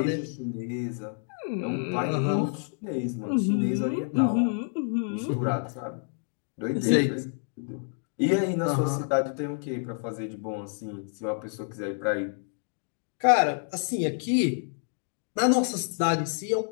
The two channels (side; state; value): right; silent; 59 dB below the other